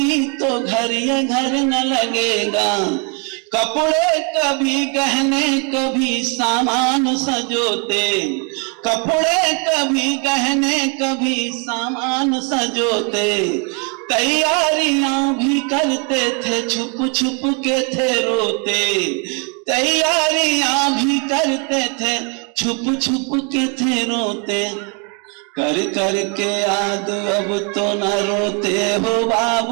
तो घर ये घर न लगेगा। कपड़े कभी गहने कभी सामान सजोते, कपड़े कभी गहने कभी सामान सजोते। तैयारियां भी करते थे छुप छुप के थे रोते, तैयारियां भी करते थे छुप छुप के थे रोते। कर कर के याद अब तो न रोते हो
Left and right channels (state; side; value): quieter; left; 35.9 dB